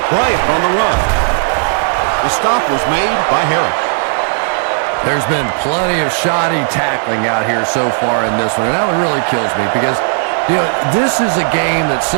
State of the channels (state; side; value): silent; left; 71 dB below the other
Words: Bryant on the run. The stop was made by Harris. There's been plenty of shoddy tackling out here so far in this one, and that one really kills me because, you know, this is a game that